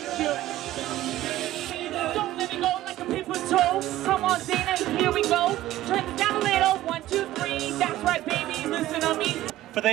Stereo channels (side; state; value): left; quieter; 14.9 dB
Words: let me go like a paper toe. Come on, Zena, here we go. Turn this down a little. 1, 2, 3. That's right, baby. Listen to me. For